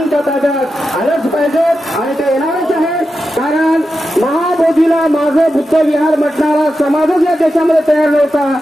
ताब्यात आलंच पाहिजे आणि ते येणारच आहे. कारण महाबोधीला माझं बुद्ध विहार म्हटणारा समाजच या देशामध्ये तयार नव्हता.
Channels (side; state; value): both; normal; correlation 0.90